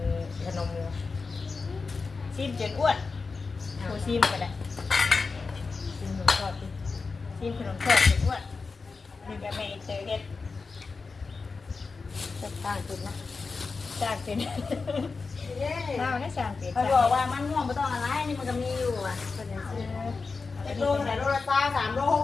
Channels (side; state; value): right; quieter; 4.4 dB